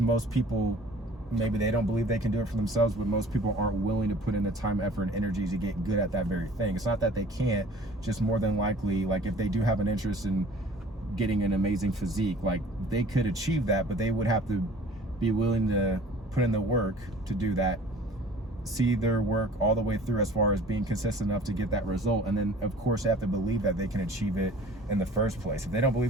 people, maybe they don't believe they can do it for themselves, but most people aren't willing to put in the time, effort, and energy to get good at that very thing. It's not that they can't, just more than likely, like if they do have an interest in getting an amazing physique, like they could achieve that, but they would have to be willing to put in the work to do that, see their work all the way through as far as being consistent enough to get that result. And then of course they have to believe that they can achieve it in the first place. If they don't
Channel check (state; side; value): normal; both; correlation 0.48